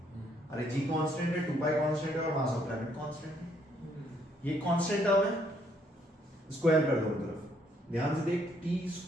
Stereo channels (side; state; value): both; normal; correlation 0.69